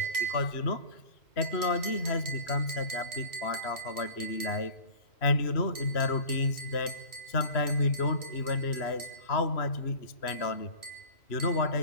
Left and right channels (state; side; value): late; right; 3.0 ms